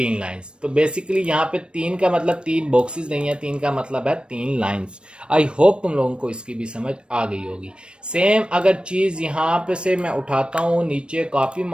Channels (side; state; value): left; late; 0.056 ms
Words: लाइंस। तो बेसिकली यहाँ पे 3 का मतलब 3 बॉक्सेस नहीं है, 3 का मतलब है 3 लाइंस। आई होप तुम लोगों को इसकी भी समझ आ गई होगी। सेम अगर चीज यहाँ पे से मैं उठाता हूँ नीचे कॉपी